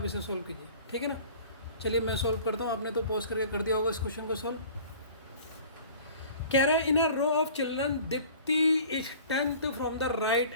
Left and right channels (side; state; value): both; inverted; correlation -0.46